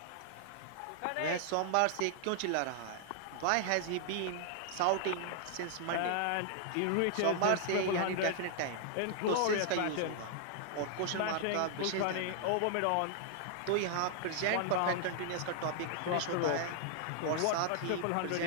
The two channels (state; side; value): different; both; correlation 0.00